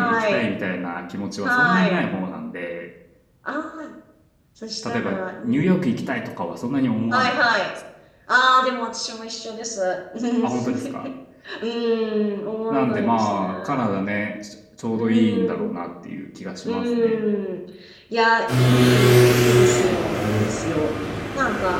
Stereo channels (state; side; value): identical; both; correlation 1.00